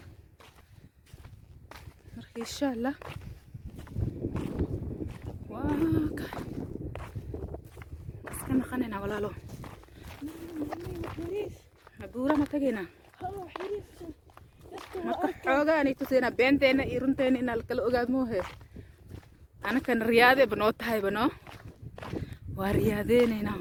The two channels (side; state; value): both; identical; correlation 1.00